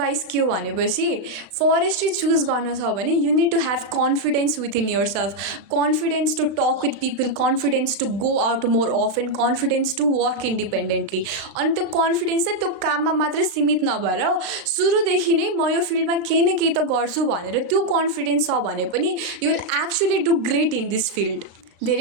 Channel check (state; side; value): late; left; 36 ms